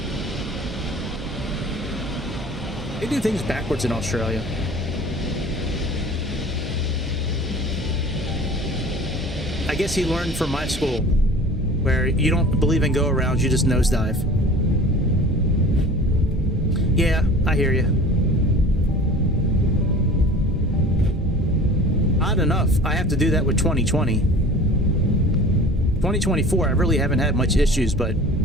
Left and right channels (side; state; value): both; normal; correlation 0.43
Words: They do things backwards in Australia. I guess he learned from my school, where you don't believe in go-arounds, you just nosedive. Yeah, I hear you. Odd enough, I have to do that with 2020. 2024, I really haven't had much issues, but